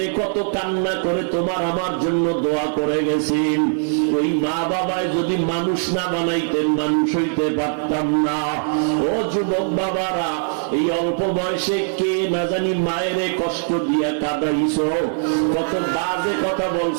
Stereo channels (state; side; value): silent; left; 58 dB below the other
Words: কত কান্না করে তোমার আমার জন্য দোয়া করে গেছেন। ওই মা বাবায় যদি মানুষ না বানাইতেন, মানুষ হইতে পারতাম না। ও যুবক বাবারা, এই অল্প বয়সে কে না জানি মায়েরে কষ্ট দিয়া কাঁদাইছো, কত বাজে কথা